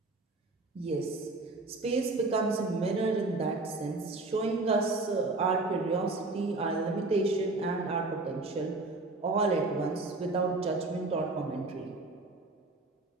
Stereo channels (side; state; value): left; quieter; 3.2 dB